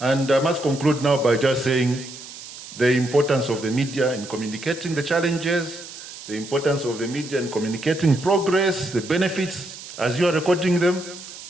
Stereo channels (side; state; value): right; noise; hiss, 14 dB below the sound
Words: I must conclude now by just saying the importance of the media in communicating the challenges, the importance of the media in communicating progress, the benefits as you are recording them,